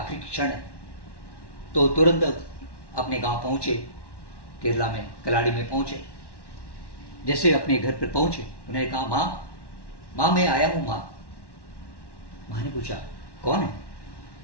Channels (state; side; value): late; right; 1.1 ms